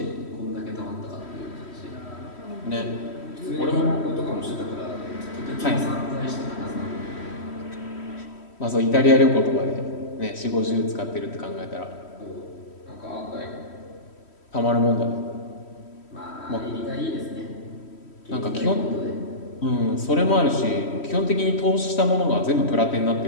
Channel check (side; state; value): right; late; 3.1 ms